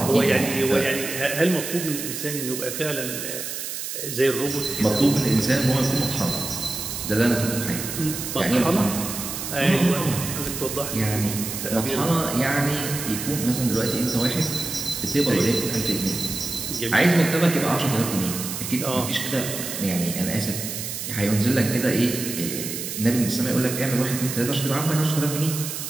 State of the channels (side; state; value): right; noise; hiss, 6 dB below the sound